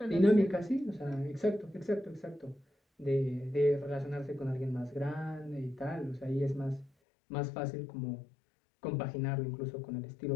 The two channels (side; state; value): right; drops out; at 6.9 s